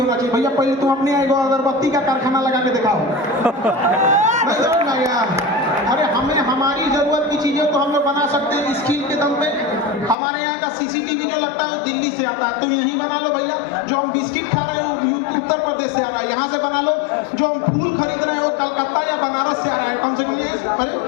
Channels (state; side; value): drops out; right; at 10.2 s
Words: चाहिए। भैया पहले तुम अपने एगो अगरबत्ती का कारखाना लगा के दिखाओ। नहीं समझ में आया? अरे हमें हमारी जरूरत की चीजें तो हम लोग बना सकते हैं स्किल के दम पे। हमारे यहाँ का सीसीटीवी जो लगता है वो दिल्ली से आता है, तुम यहीं बना लो भैया। जो हम बिस्किट खा रहे हैं वो उत्तर प्रदेश से आ रहा है, यहाँ से बना लो। जो हम फूल खरीद रहे हैं वो कलकत्ता या बनारस से आ रहा है, कम से कम यही। अरे